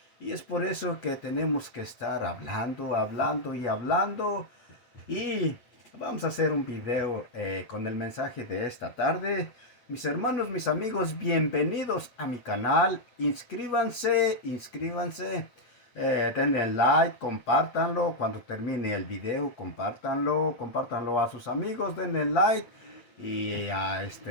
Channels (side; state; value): right; late; 8.2 ms